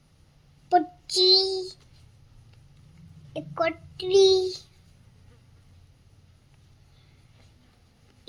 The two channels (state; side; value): identical; both; correlation 1.00